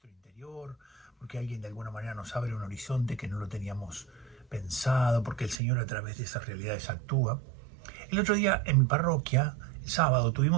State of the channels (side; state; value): left; drops out; at 5.6 s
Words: interior, porque alguien de alguna manera nos abre un horizonte que no lo teníamos pensado, porque el Señor a través de esas realidades actúa. El otro día en mi parroquia, el sábado,